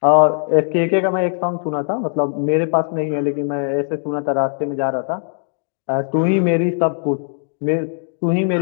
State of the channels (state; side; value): silent; right; digital silence